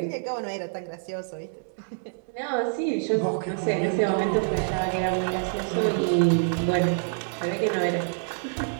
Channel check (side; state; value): left; silent; 60 dB below the other